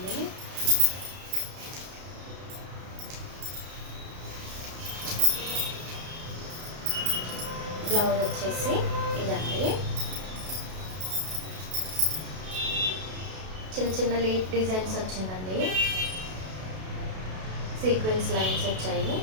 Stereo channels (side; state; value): left; late; 32 ms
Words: బ్లౌజ్ వచ్చేసి ఇదండి, చిన్న చిన్న లీఫ్ డిజైన్స్ వచ్చిందండి, సీక్వెన్స్ లైన్స్ వచ్చాయి,